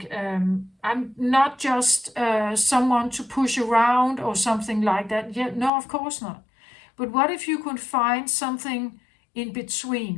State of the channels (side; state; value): right; drops out; at 5.7 s